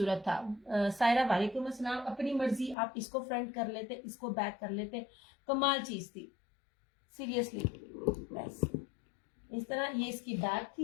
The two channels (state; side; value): drops out; right; at 2.8 s